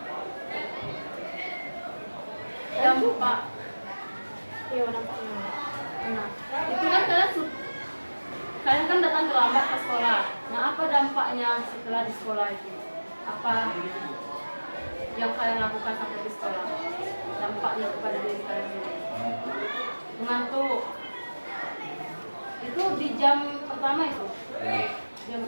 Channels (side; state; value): both; inverted; correlation -1.00